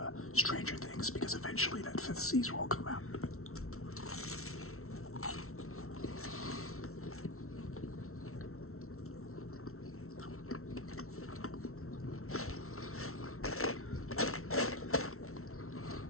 Stranger Things, because eventually that 5th season will come out.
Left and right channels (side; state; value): right; late; 0.63 ms